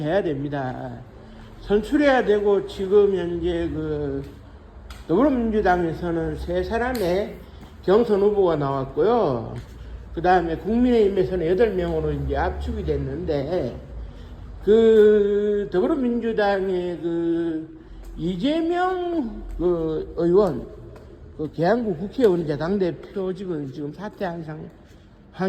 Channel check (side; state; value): both; identical; correlation 1.00